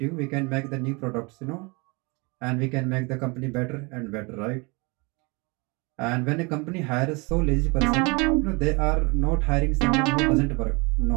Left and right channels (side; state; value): left; quieter; 28.8 dB